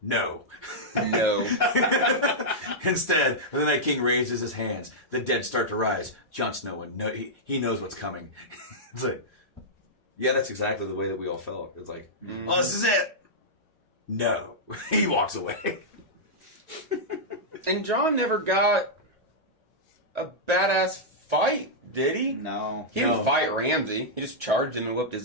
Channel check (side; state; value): both; normal; correlation -0.09